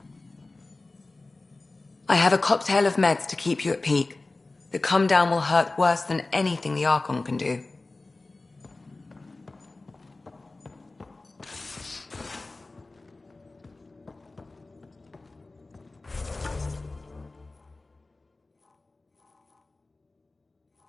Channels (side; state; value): right; quieter; 3.3 dB